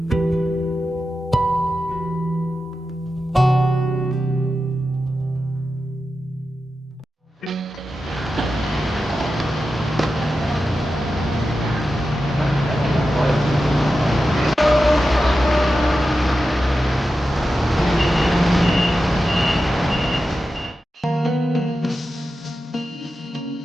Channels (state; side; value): normal; both; correlation 0.91